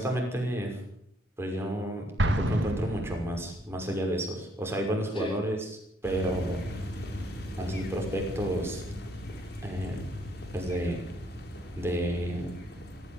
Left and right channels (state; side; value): normal; both; correlation 0.69